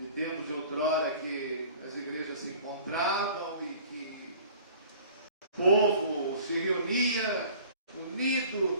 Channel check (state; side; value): inverted; both; correlation -0.48